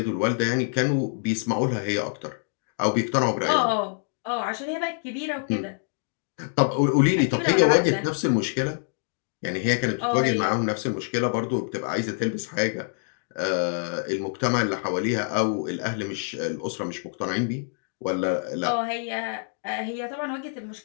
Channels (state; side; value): silent; right; 60 dB below the other